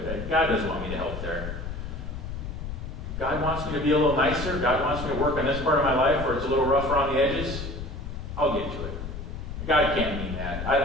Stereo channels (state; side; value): noise; left; rumble, 7 dB below the sound